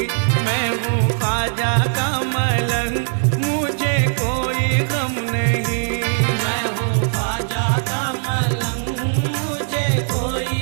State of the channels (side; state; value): left; silent; 59 dB below the other